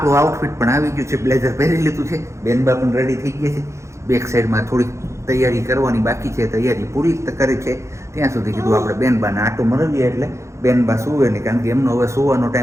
આઉટફિટ પણ આવી ગયું છે બ્લેઝર પહેરી લીધું છે બેનબા પણ રેડી થઈ ગયા છે બેક સાઈડમાં થોડીક તૈયારી કરવાની બાકી છે તૈયારી પૂરી કરી છે ત્યાં સુધી કીધું આપણે બેનબાને આટો મરવીએ એટલે બેનબા સુવે નહીં કારણ કે એમનો હવે સુવાનો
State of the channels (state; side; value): late; left; 0.14 ms